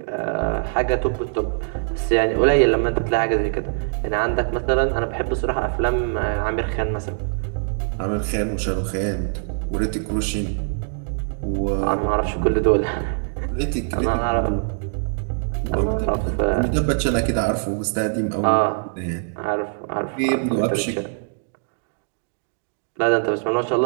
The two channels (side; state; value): left; silent; digital silence